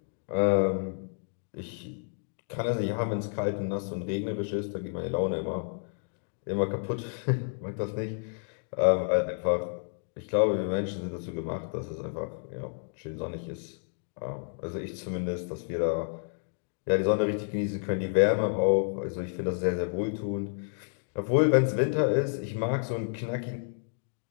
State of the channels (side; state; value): right; silent; digital silence